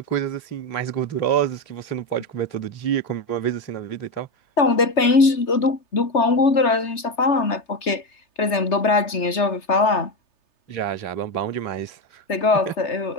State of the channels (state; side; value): late; right; 3.3 ms